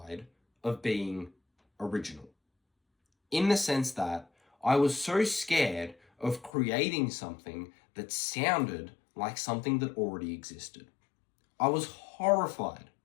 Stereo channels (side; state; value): right; drops out; at 6.5 s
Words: of being original. In the sense that I was so scared of creating something that sounded like something that already existed. I was horrified